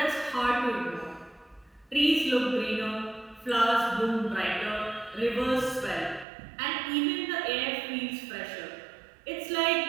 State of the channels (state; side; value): drops out; left; at 6.2 s